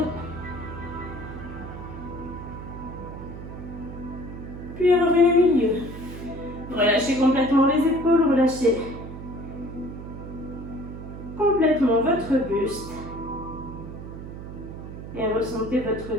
Puis revenez au milieu. Relâchez complètement les épaules, relâchez complètement votre buste. Et ressentez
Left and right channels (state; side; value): noise; right; hum, 10 dB below the sound